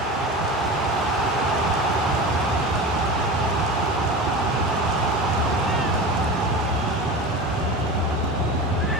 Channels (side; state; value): both; normal; correlation 0.29